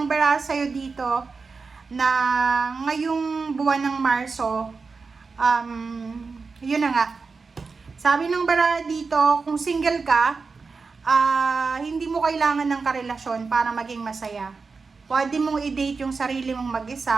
baraha sa'yo dito na ngayong buwan ng Marso, yun na nga. Sabi ng baraha dito, kung single ka, hindi mo kailangan ng karelasyon para maging masaya. Pwede mong i-date yung sarili mong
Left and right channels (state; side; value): quieter; left; 4.6 dB